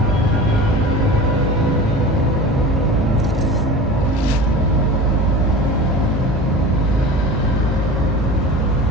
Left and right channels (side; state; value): both; normal; correlation 0.34